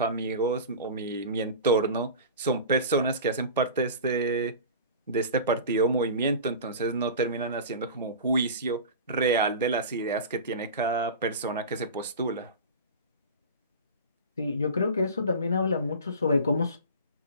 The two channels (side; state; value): both; inverted; correlation -0.32